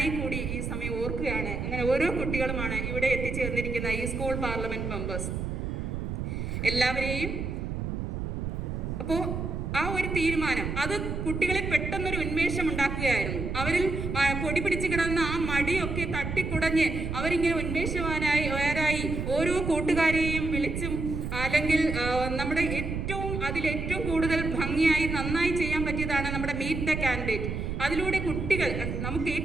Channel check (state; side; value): noise; right; rumble, 3 dB below the sound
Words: കൂടി ഈ സമയം ഓർക്കുകയാണ്. അങ്ങനെ ഓരോ കുട്ടികളുമാണ് ഇവിടെ എത്തിച്ചേർന്നിരിക്കുന്ന ഈ സ്കൂൾ പാർലമെന്റ് മെമ്പേഴ്സ് എല്ലാവരെയും. അപ്പോൾ ആ ഒരു തീരുമാനം അത് കുട്ടികളെ പെട്ടെന്നൊരു ഉന്മേഷം ഉണ്ടാക്കുകയായിരുന്നു. അവരിൽ പൊടി പിടിച്ച് കിടന്ന ആ മടിയൊക്കെ തട്ടിക്കുടഞ്ഞ് അവരിങ്ങനെ ഉന്മേഷവാനായി ഓരോ കൂട്ടുകാരെയും വിളിച്ചും, അല്ലെങ്കിൽ നമ്മുടെ അതിലേറ്റവും കൂടുതൽ ഭംഗിയായി നന്നായി ചെയ്യാൻ പറ്റിയതാണ് നമ്മുടെ മീറ്റ് ദ കാൻഡിഡേറ്റ്. അതിലൂടെ കുട്ടികൾ നമുക്ക്